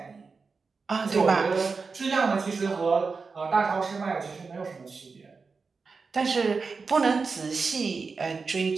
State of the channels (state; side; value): quieter; left; 4.6 dB